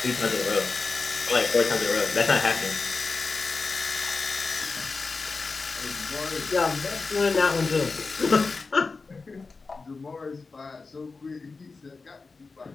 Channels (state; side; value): quieter; right; 4.2 dB